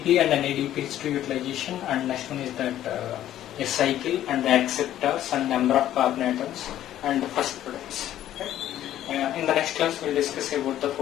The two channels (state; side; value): quieter; right; 12.3 dB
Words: and NADPH2 utilization, and next one is that a cycle and the acceptors and number of carbon atoms and the first products. Right? In the next class we will discuss about the